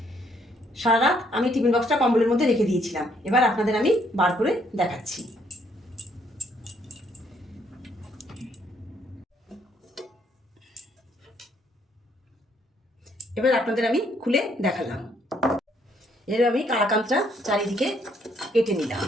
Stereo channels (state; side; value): normal; both; correlation 0.69